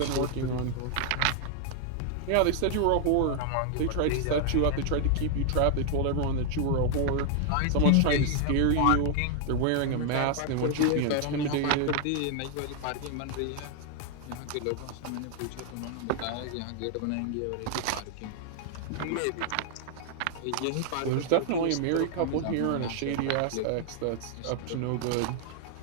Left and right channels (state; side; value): different; both; correlation 0.00